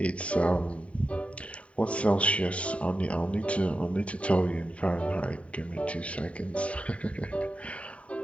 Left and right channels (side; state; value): right; late; 0.064 ms